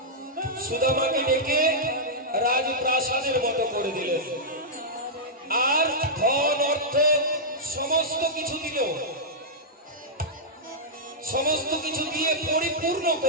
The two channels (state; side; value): normal; both; correlation -0.09